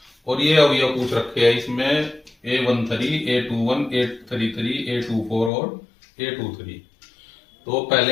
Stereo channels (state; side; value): drops out; right; at 5.5 s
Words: और ये अवयव पूछ रखे हैं इसमें A13, A21, A33, A24 और A23। तो